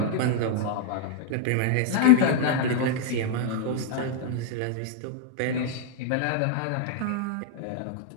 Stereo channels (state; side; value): different; both; correlation -0.01